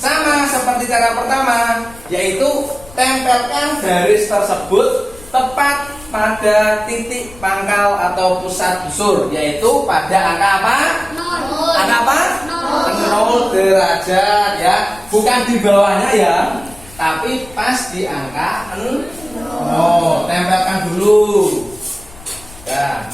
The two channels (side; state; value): left; noise; rumble, 21 dB below the sound